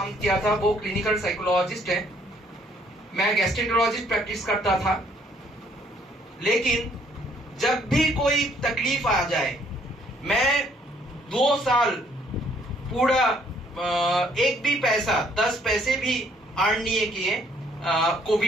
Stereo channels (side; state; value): both; normal; correlation 0.65